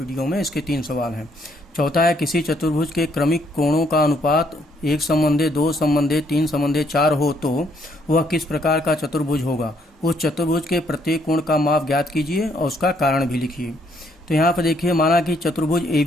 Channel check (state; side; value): normal; both; correlation 0.69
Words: में। इसके 3 सवाल हैं। चौथा है, किसी चतुर्भुज के क्रमिक कोणों का अनुपात 1 संबंधे 2 संबंधे 3 संबंधे 4 हो तो वह किस प्रकार का चतुर्भुज होगा। उस चतुर्भुज के प्रत्येक कोण का माप ज्ञात कीजिए और उसका कारण भी लिखिए। तो यहाँ पर देखिए, माना कि चतुर्भुज